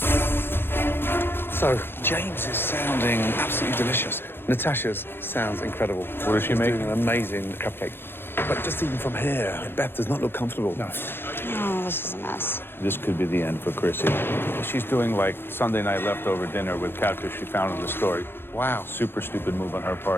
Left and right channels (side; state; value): right; late; 0.10 ms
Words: So, James is sounding absolutely delicious. Natasha's sounds incredible. What is she making? Doing an amazing cupcake. But just even from here, Beth does not look comfortable. No. Oh, this is a mess. This could be the end for Chrissy. She's doing like Sunday night leftover dinner with catfish she found in the store. Wow. Super stupid move on her